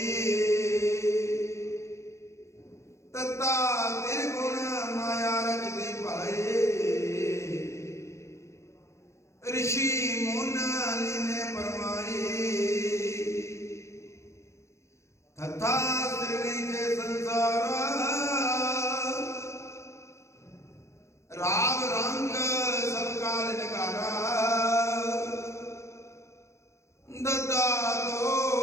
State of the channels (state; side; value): late; right; 0.14 ms